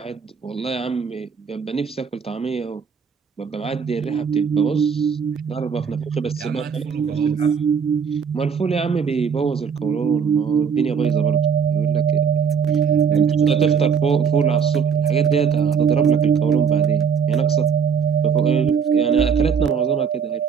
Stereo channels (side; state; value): left; quieter; 6.5 dB